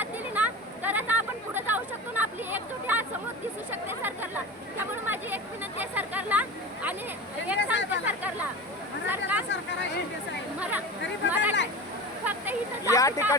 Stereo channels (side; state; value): both; normal; correlation 0.29